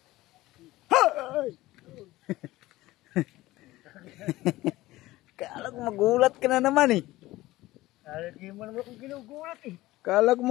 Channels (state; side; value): quieter; right; 17.8 dB